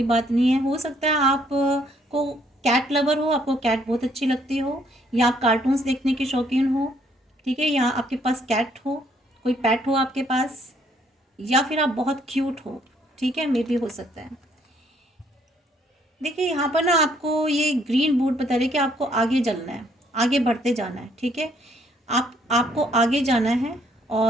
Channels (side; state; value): both; normal; correlation 0.67